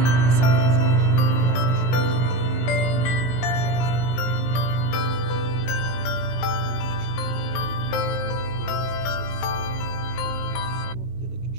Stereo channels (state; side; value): late; right; 17 ms